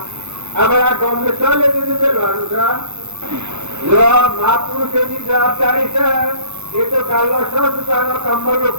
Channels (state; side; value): late; left; 0.82 ms